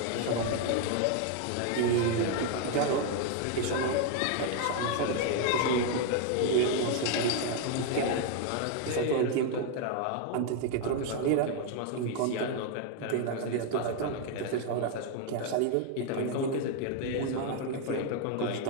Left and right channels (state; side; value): different; both; correlation 0.01